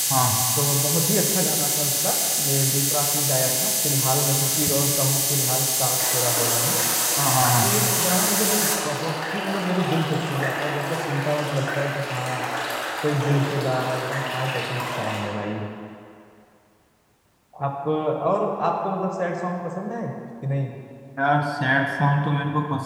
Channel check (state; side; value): identical; both; correlation 1.00